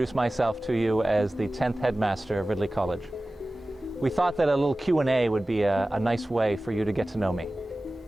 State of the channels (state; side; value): normal; both; correlation 0.97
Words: myself to you as the 10th Headmaster of Ridley College. We thought that a little Q&A would be a nice way for you to get to know me.